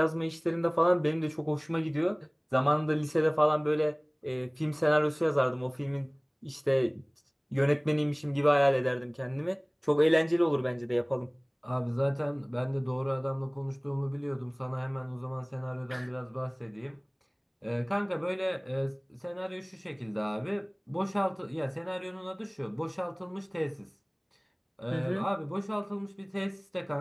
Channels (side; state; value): both; identical; correlation 1.00